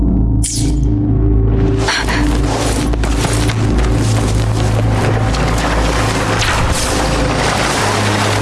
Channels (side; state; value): both; identical; correlation 1.00